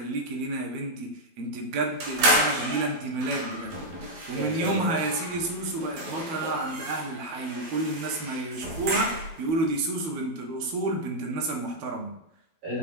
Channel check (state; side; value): late; left; 12 ms